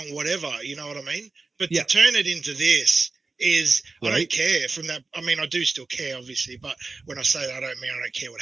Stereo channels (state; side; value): quieter; left; 3.8 dB